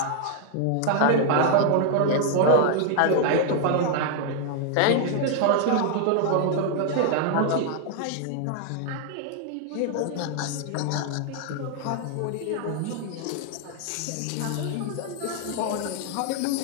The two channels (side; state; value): both; different; correlation 0.00